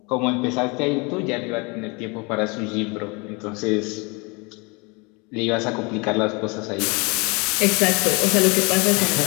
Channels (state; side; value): quieter; right; 28.7 dB